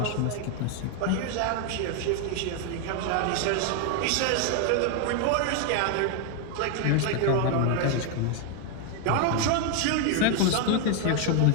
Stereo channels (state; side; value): different; both; correlation 0.01